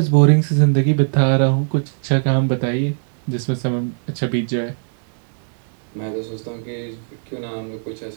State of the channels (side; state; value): left; silent; 66 dB below the other